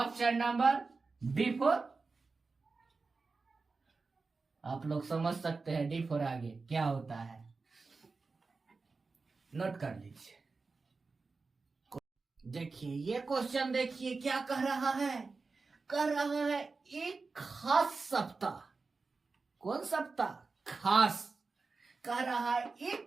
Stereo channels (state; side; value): quieter; left; 4.2 dB